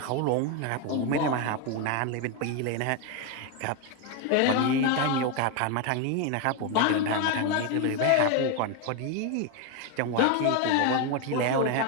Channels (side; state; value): both; different; correlation 0.01